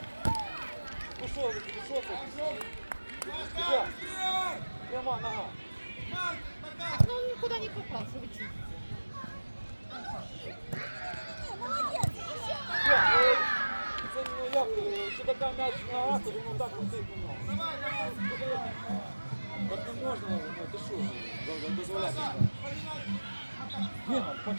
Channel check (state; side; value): inverted; both; correlation -1.00